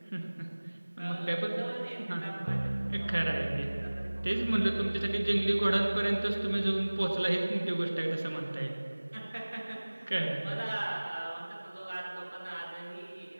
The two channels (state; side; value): inverted; both; correlation -1.00